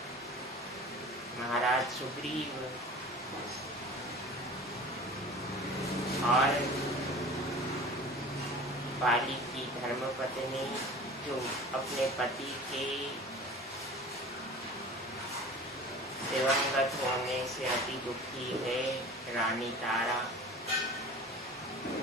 महाराज सुग्रीव और बाली की धर्मपत्नी जो अपने पति के दिवंगत होने से अति दुखी है, रानी तारा,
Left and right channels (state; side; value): normal; both; correlation 0.39